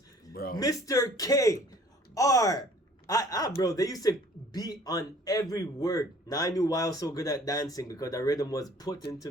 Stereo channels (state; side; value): normal; both; correlation 0.53